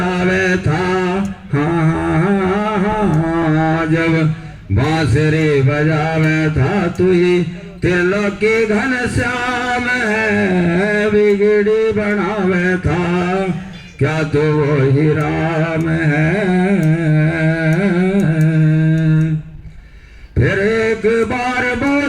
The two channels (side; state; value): both; identical; correlation 1.00